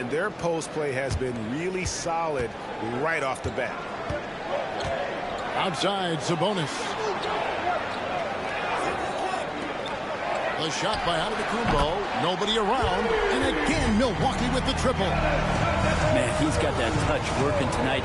their post play has been really solid right off the bat. Outside, Sabonis. The shot by Antetokounmpo. Nobody around. And again, Milwaukee with the triple. Man, he's got that touch working tonight,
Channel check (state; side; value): identical; both; correlation 1.00